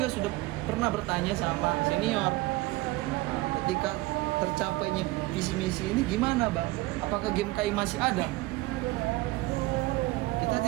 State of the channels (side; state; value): left; quieter; 19.7 dB